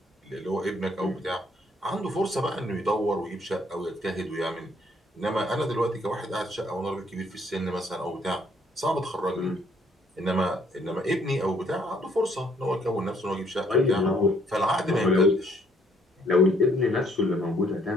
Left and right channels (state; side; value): normal; both; correlation 0.66